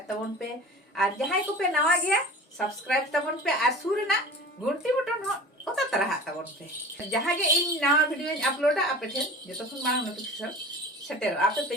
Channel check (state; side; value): normal; both; correlation 0.38